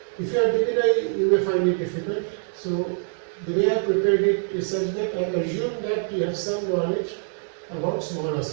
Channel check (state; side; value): silent; left; digital silence